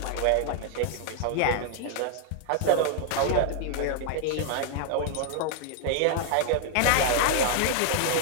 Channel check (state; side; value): different; both; correlation 0.00